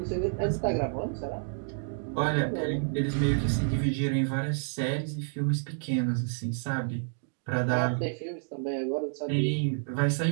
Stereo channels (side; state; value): left; silent; digital silence